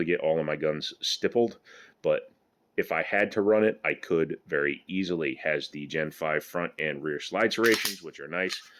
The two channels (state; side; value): identical; both; correlation 1.00